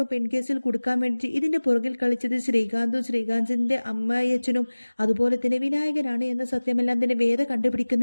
പെൺകേസിൽ കൊടുക്കാൻ വേണ്ടി ഇതിന്റെ പുറകിൽ കളിച്ചത് ശ്രീകാന്തും ശ്രീകാന്തിന്റെ അമ്മയച്ചനും അതുപോലെ തന്നെ വിനായകനാണ് എന്ന സത്യമെല്ലാം തന്നെ വേദ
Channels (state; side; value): inverted; both; correlation -1.00